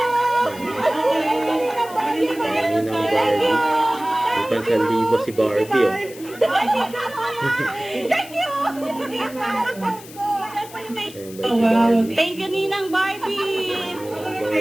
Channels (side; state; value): left; noise; hiss, 18 dB below the sound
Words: Ayan, yun ang Barbie. May pansalibo si Barbie, oh. Thank you. Ayan, ba si Barbie? Thank you, Ninang Barbie.